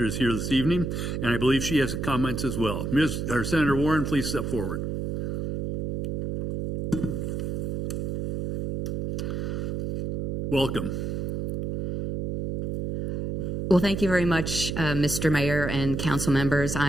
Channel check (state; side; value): noise; right; hum, 2 dB below the sound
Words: is here this evening, and I believe she has comments as well. Senator Warren, please step forward. Welcome. Well, thank you very much, Mr. Mayor and council members.